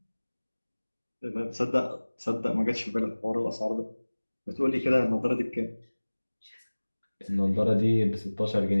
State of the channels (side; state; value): both; inverted; correlation -1.00